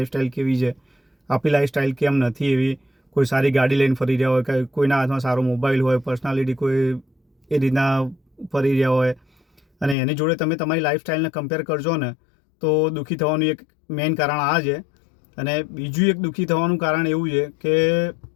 કેવી છે, આપણી લાઈફસ્ટાઈલ કેમ નથી એવી. કોઈ સારી ગાડી લઈને ફરી રહ્યા હોય, કે કોઈના હાથમાં સારો મોબાઈલ હોય, પર્સનાલિટી કોઈ એ રીતના ફરી રહ્યા હોય, અને એની જોડે તમે તમારી લાઈફસ્ટાઈલને કમ્પેર કરજો ને તો દુઃખી થવાનું એક મેઇન કારણ આ છે. અને બીજું એક દુઃખી થવાનું કારણ એવું છે કે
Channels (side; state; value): right; drops out; at 10.0 s